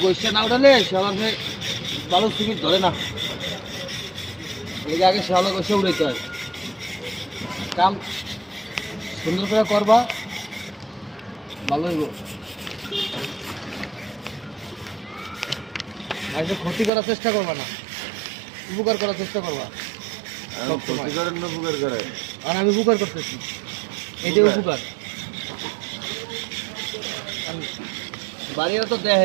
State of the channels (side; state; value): left; drops out; at 16.9 s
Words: গাছটা না উঠালে শ্যাওলাকে ভালো সিমেন্ট ধরে না। এই আগে শ্যাওলা গাছটা উঠাইতে হয়। কাম সুন্দর করে করবা ভালো হইব। আজকে ক্ষতি করার চেষ্টা করবা না, উপকার করার চেষ্টা করবা। ক্ষতি করেন না উপকার করে? আর আমি উপকার করতেছি, এটাই উপকার। বাড়িরা তো